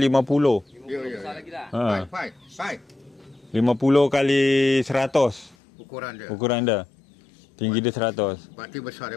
Ya. Baik. 50 kali 100 ukuran dia. Tinggi dia 100. Berarti besar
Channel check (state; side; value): drops out; right; at 5.6 s